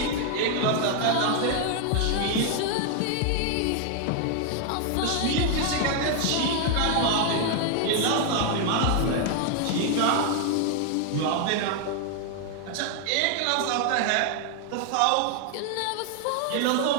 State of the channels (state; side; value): different; both; correlation 0.00